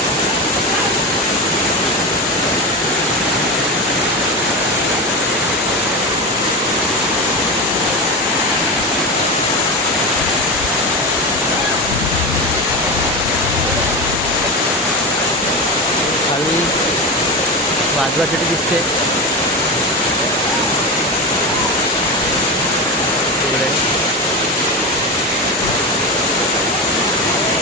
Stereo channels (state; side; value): normal; both; correlation 0.20